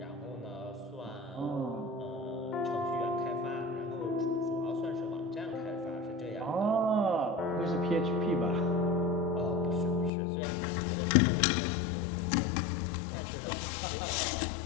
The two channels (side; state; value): right; drops out; at 10.1 s